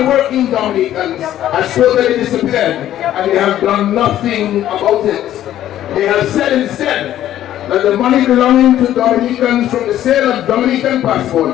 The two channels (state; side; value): quieter; right; 12.3 dB